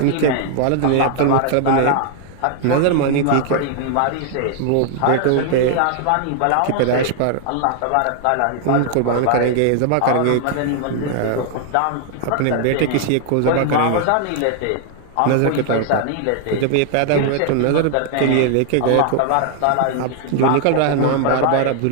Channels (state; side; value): different; both; correlation 0.00